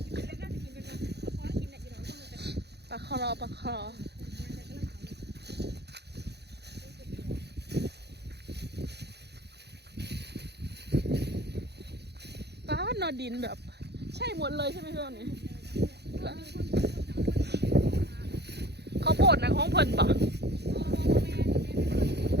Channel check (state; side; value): late; left; 0.48 ms